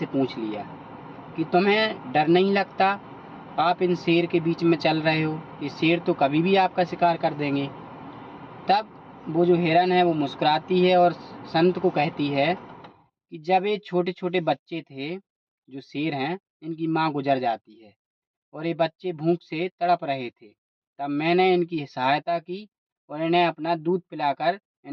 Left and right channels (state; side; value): identical; both; correlation 1.00